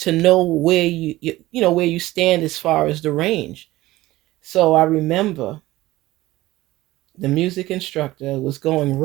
know where where you stand as far as the range. So I remember the music instructor was going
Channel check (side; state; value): left; quieter; 17.4 dB